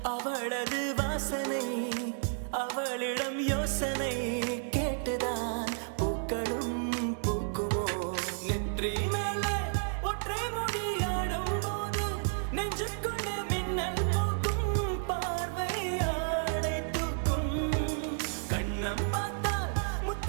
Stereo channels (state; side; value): silent; left; 57 dB below the other